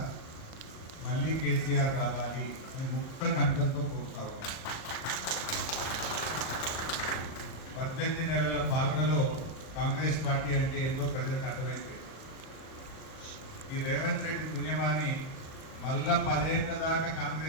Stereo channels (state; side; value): late; right; 38 ms